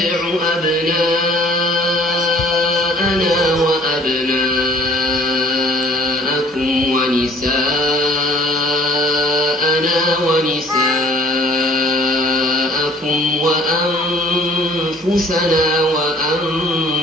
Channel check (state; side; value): normal; both; correlation 0.54